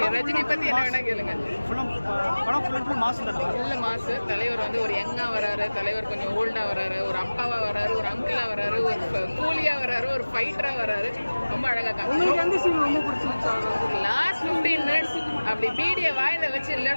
ரஜினி பத்தி என்ன வேணா கேளுங்க. படம் ஃபுல் மாஸ் தான். இல்ல மாசு. தலைவர் வந்து ஒரு யங்கா வராரு, தலைவர் கொஞ்சம் ஓல்டா வராரு, ஒரு அப்பாவா வராரு, ஒரு அங்கிளா வராரு, ஒரு கூலியா வராரு, ஒரு ஃபைட்டரா வராரு. ரொம்ப அழகா காமிச்சாங்க. எந்த சீன் ரொம்ப பிடிச்சிருந்துச்சு? லாஸ்ட் 15 மினிட்ஸ் அப்படி பீடியை வாயில வச்சு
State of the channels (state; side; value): inverted; both; correlation -1.00